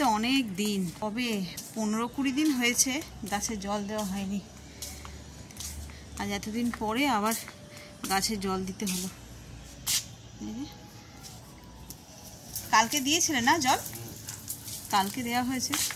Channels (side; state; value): both; identical; correlation 1.00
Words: অনেক দিন, কবে 15-20 দিন হয়েছে গাছে জল দেওয়া হয়নি। আজ এতদিন পরে আবার গাছে জল দিতে হলো। কালকে দিয়েছিলে না জল? কালকে দেওয়া হয়েছে,